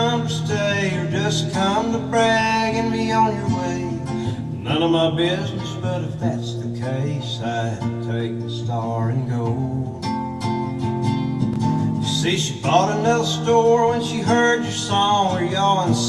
to stay or just come to brag and be on your way? None of my business, but if that's the case, I'd take the star and go. See, she bought another store when she heard your song. Were y'all in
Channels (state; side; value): identical; both; correlation 1.00